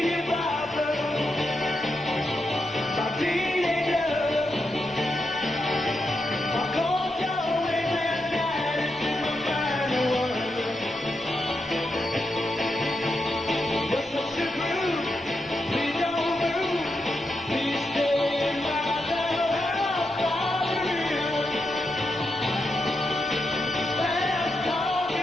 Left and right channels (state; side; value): normal; both; correlation 0.85